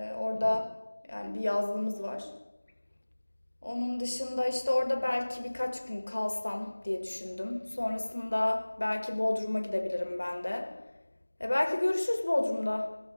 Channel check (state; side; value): inverted; both; correlation -1.00